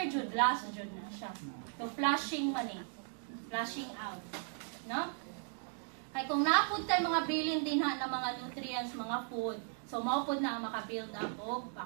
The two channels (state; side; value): silent; left; 53 dB below the other